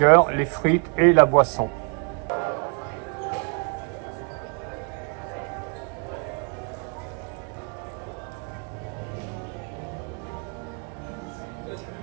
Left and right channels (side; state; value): left; quieter; 37.9 dB